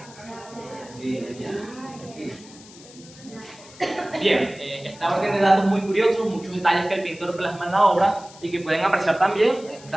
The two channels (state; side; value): noise; left; hiss, 21 dB below the sound